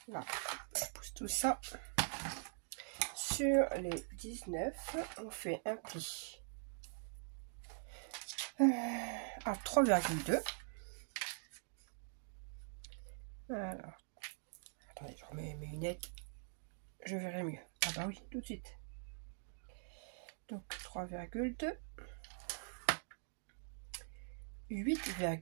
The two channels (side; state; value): left; silent; digital silence